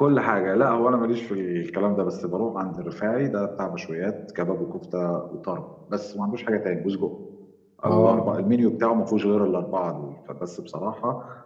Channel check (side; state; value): both; identical; correlation 1.00